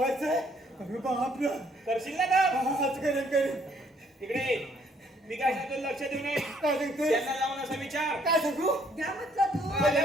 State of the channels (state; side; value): normal; both; correlation 0.66